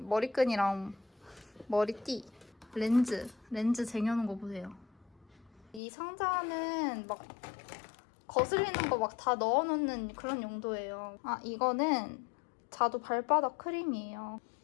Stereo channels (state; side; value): drops out; right; at 5.8 s